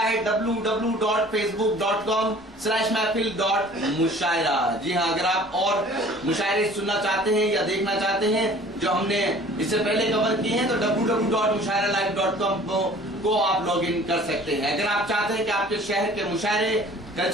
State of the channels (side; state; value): both; normal; correlation 0.49